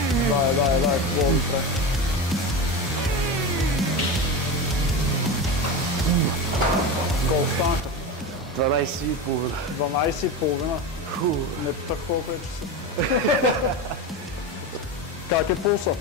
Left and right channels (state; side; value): normal; both; correlation 0.22